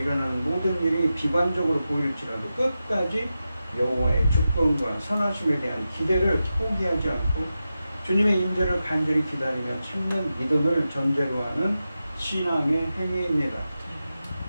모든 일이 비관적으로 보일지라도 끝까지 여호와의 주권과 선하심에 대한 기대를 포기하지 않고 주님의 임재를 간절히 기다리며 찾는 믿음을 전제로 하는 신앙의 행위입니다.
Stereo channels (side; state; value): both; inverted; correlation -0.91